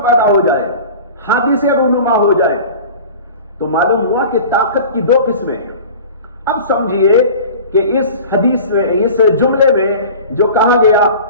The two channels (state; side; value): inverted; both; correlation -0.39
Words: پیدا ہو جائے، حادثے رونما ہو جائے. تو معلوم ہوا کہ طاقت کی دو قسمیں ہیں. اب سمجھیے کہ اس حدیث میں، اس جملے میں جو کہا گیا